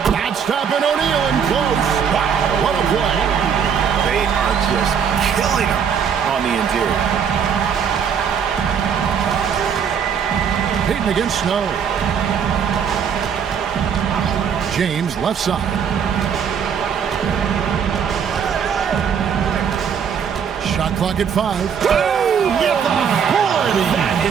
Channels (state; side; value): quieter; left; 7.3 dB